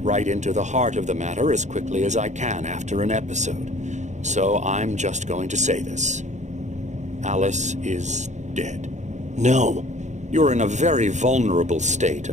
right into the heart of the matter as quickly as I can after an episode. So I'm just going to say this. Alice is dead. No. You're in a very vulnerable state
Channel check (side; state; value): left; late; 0.34 ms